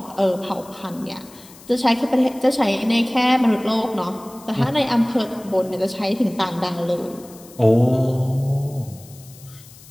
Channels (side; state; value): left; noise; hiss, 22 dB below the sound